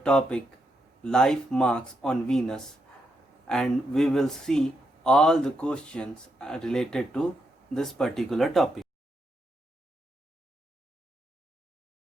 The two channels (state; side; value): normal; both; correlation 0.81